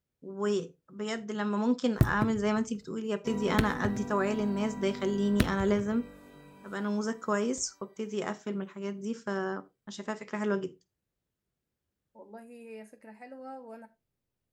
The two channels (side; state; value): both; identical; correlation 1.00